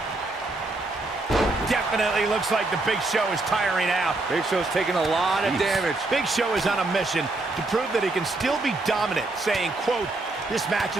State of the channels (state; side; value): quieter; left; 3.0 dB